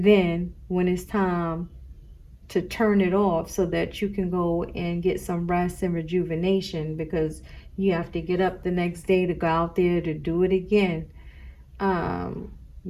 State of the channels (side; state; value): both; identical; correlation 1.00